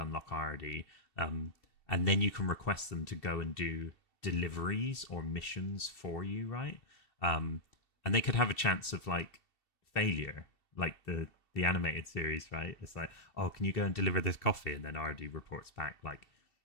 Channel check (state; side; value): late; right; 2.7 ms